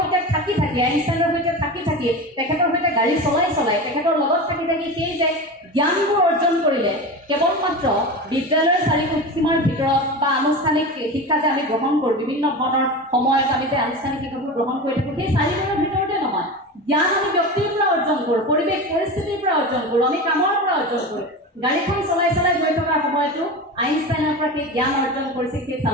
থাকি আইনষ্টাইনৰ সৈতে থাকি তেখেতৰ সৈতে গাড়ী চলাই তেখেতৰ লগত থাকি সেই যে জ্ঞানবোৰ অৰ্জন কৰিলে কেৱল মাত্ৰ বিদ্যালয়ৰ চাৰিসীমাৰ ভিতৰত বা আনুষ্ঠানিক শিক্ষা যে আমি গ্ৰহণ কৰোঁ বিভিন্ন ধৰণৰ সময়ত আমি যে আনুষ্ঠানিক শিক্ষাবোৰ গ্ৰহণ কৰি থাকোঁ সেই চাৰিসীমাৰ ভিতৰতে নহয় জ্ঞান আমি ব্যক্তিৰ পৰা অৰ্জন কৰোঁ পৰিৱেশ পৰিস্থিতিৰ পৰা অৰ্জন কৰোঁ আমি কামৰ পৰা অৰ্জন কৰোঁ গাড়ীখন চলাই গৈ থকাৰ সময়তো আইনষ্টাইনৰ পৰা সেই জ্ঞান অৰ্জন কৰিছিল সেই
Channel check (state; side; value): normal; both; correlation 0.26